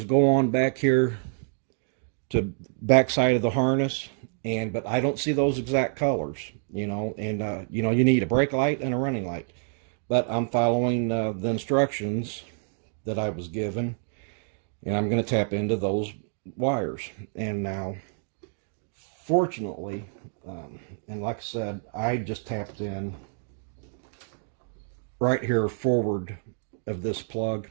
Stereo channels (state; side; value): silent; left; 60 dB below the other